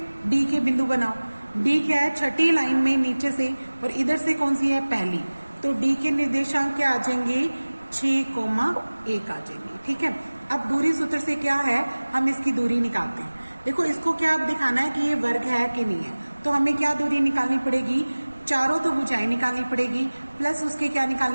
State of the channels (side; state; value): both; inverted; correlation -1.00